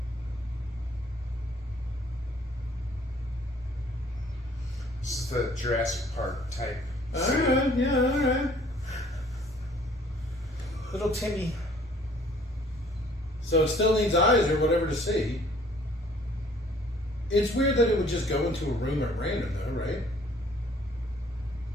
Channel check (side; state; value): both; normal; correlation 0.58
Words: This is the Jurassic Park type. Alright, yeah, alright. Little Timmy. So it still needs eyes or whatever to see. It's weird that it would just go into a room at random though, right?